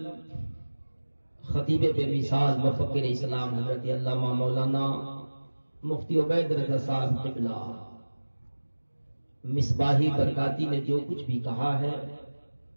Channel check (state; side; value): inverted; both; correlation -1.00